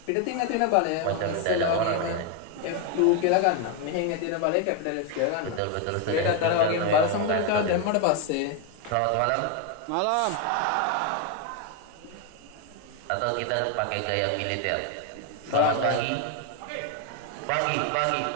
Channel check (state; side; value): different; both; correlation 0.01